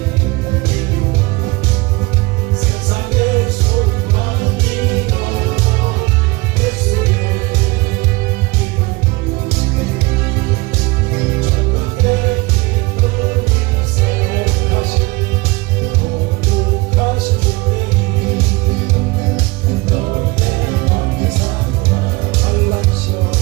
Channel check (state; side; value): quieter; left; 23.7 dB